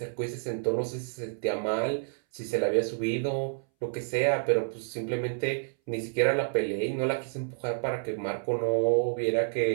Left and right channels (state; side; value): silent; left; 58 dB below the other